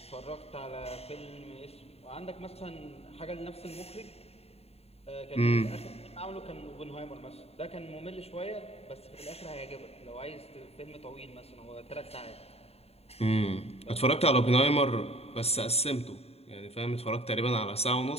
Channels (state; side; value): late; right; 0.29 ms